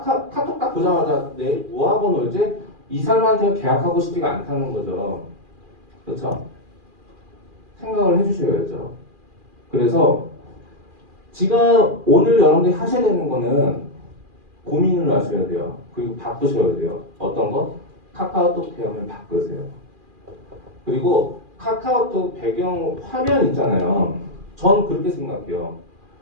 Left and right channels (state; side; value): late; left; 2.4 ms